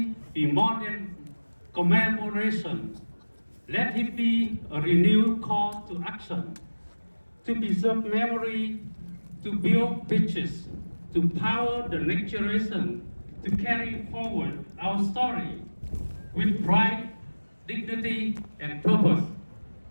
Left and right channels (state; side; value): inverted; both; correlation -1.00